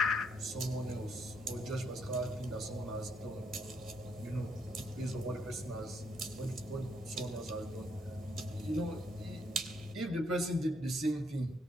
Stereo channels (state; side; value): normal; both; correlation 0.73